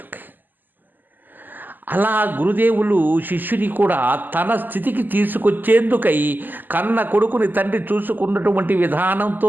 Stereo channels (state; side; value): late; left; 0.088 ms